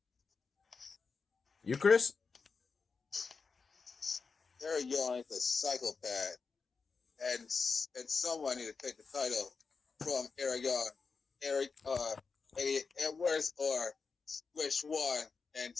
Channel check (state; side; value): quieter; right; 4.9 dB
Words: You, Chris? Eric Young is a psychopath, and someone need to take the title from Eric Young. Eddie Edwards or which one, and